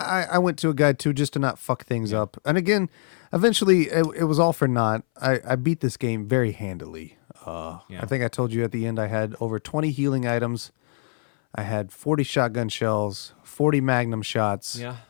went to a guide too just to not fuck things up. And again, eventually it was all for naught. I beat this game very handily. I think I told you at the end I had over 20 healing items. I had 40 shotgun shells, 40 magnum shots. Yeah.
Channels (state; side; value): silent; right; 61 dB below the other